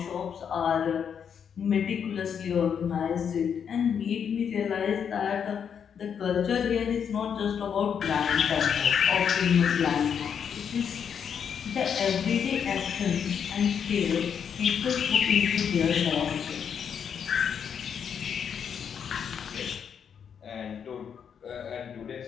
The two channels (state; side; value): quieter; right; 7.6 dB